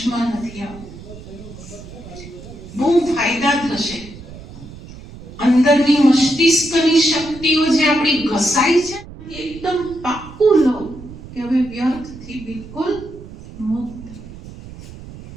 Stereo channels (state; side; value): noise; right; rumble, 16 dB below the sound